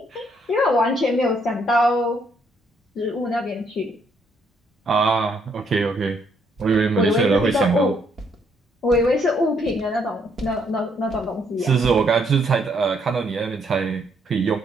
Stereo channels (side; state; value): both; normal; correlation 0.71